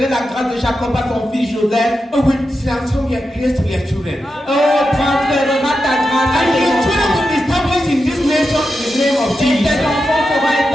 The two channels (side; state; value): both; normal; correlation 0.89